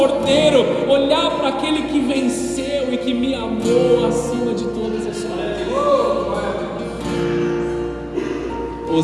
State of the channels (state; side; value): identical; both; correlation 1.00